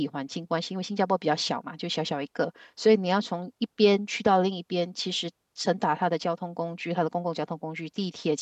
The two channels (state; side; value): identical; both; correlation 1.00